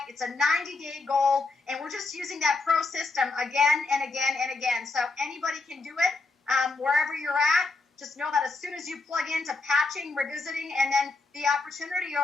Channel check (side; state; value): right; quieter; 3.6 dB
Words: It's a 90-day goal, and we're just using that pro system again and again and again. So anybody can do it wherever you're at. Just know that as soon as you plug into patching, revisiting, and then the opportunity